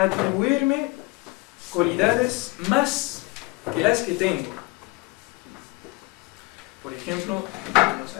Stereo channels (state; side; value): quieter; right; 24.5 dB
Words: cualidades más que las que tengo. Por ejemplo, estamos